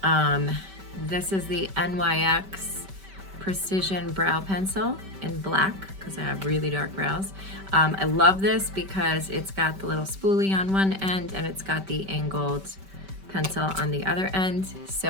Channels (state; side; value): late; left; 5.2 ms